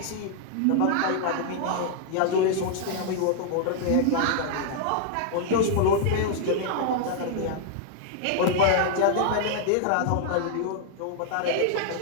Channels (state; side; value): different; both; correlation 0.00